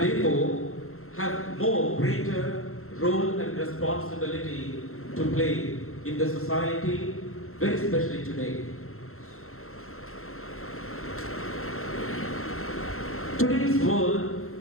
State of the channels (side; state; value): right; late; 0.62 ms